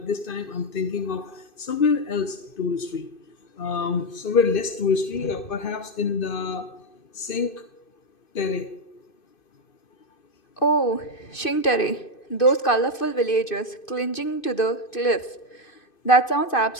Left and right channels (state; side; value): late; right; 2.5 ms